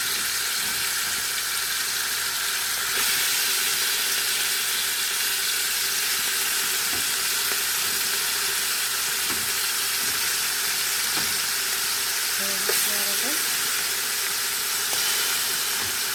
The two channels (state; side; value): identical; both; correlation 1.00